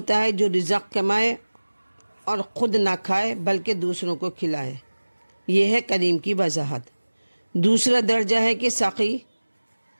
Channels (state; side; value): inverted; both; correlation -1.00